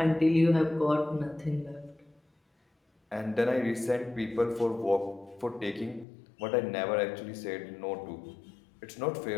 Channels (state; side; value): drops out; right; at 6.1 s